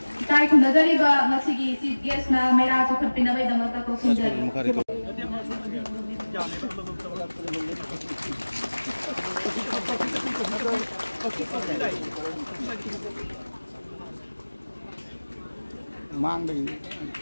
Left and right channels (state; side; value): inverted; both; correlation -1.00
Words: Kita ikut dari bah masih si guest na Meira cukup pindah dari dalam tak kau sendiri. Mang đi.